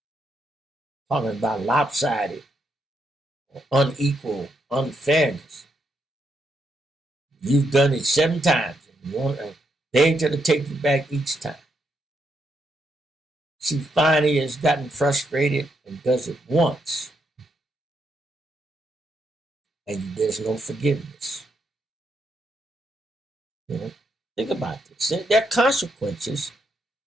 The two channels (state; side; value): normal; both; correlation 0.79